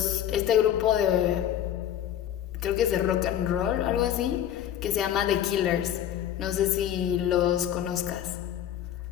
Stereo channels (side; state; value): right; quieter; 10.7 dB